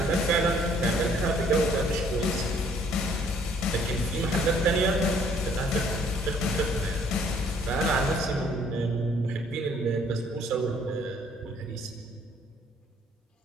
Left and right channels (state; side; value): normal; both; correlation 0.61